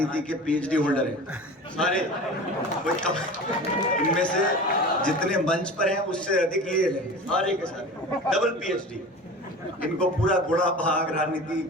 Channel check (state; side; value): normal; both; correlation 0.36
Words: के पीएचडी होल्डर हैं सारे। इनमें से जितने मंच पर हैं उससे अधिक ये हैं, सारे के सारे डबल पीएचडी। इनको पूरा गुड़ा भाग राजनीति,